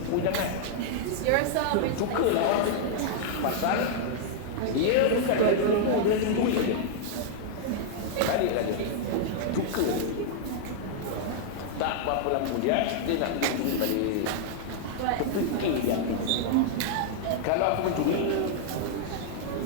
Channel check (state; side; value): different; both; correlation -0.01